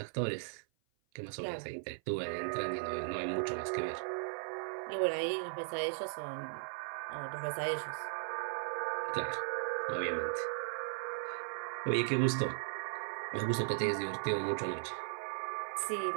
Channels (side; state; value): left; silent; 53 dB below the other